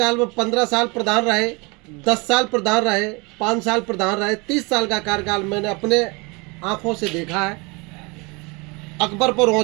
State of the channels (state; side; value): quieter; left; 28.0 dB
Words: में 15 साल प्रधान रहे, 10 साल प्रधान रहे, 5 साल प्रधान रहे, 30 साल का कार्यकाल मैंने अपने आंखों से देखा है। अकबरपुर